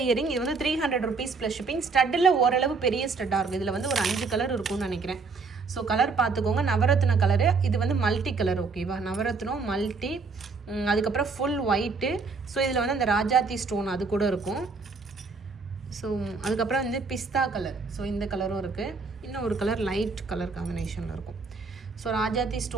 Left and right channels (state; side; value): quieter; left; 4.4 dB